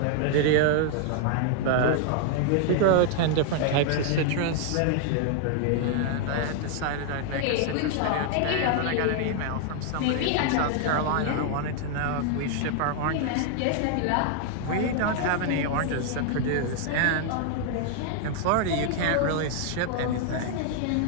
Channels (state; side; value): different; both; correlation 0.00